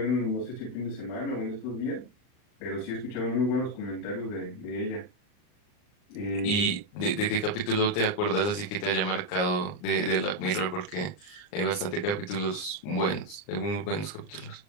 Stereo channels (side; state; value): right; late; 39 ms